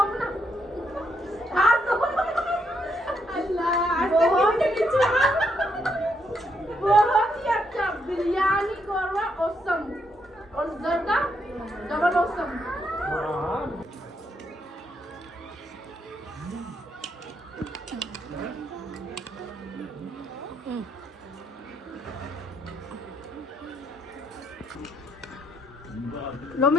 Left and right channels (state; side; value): normal; both; correlation 0.76